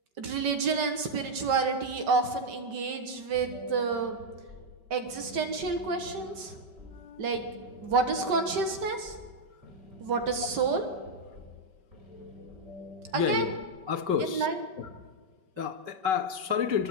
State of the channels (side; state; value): left; late; 5.2 ms